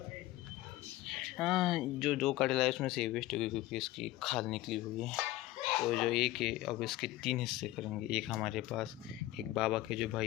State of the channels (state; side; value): quieter; right; 16.6 dB